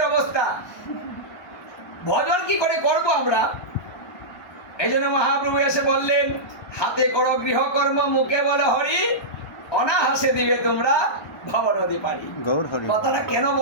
অবস্থা, ভজন কি করে করব আমরা? এই জন্য মহাপ্রভু এসে বললেন, হাতে করো গৃহকর্ম, মুখে বলো হরি, অনাহাসে দিবে তোমরা ভবনদী পারি। কথাটা কেন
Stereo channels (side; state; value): right; late; 1.0 ms